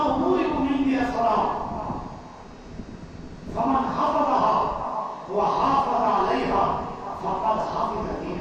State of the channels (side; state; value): both; identical; correlation 1.00